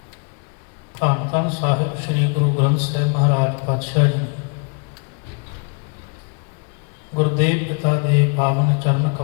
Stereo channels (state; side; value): quieter; right; 37.5 dB